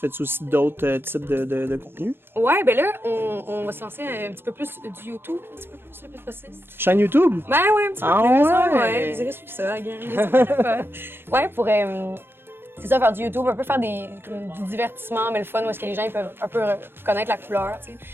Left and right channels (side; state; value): left; late; 0.10 ms